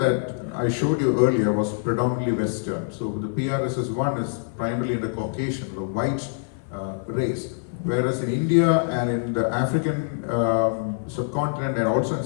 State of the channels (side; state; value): right; silent; 57 dB below the other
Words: I showed you earlier was predominantly Western. So the PRSS1 is primarily in the Caucasian, the white race. Whereas in India and in the African subcontinent and also in